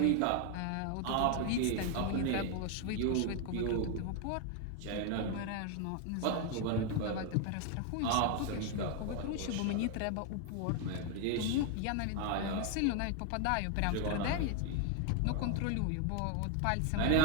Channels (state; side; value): different; both; correlation 0.01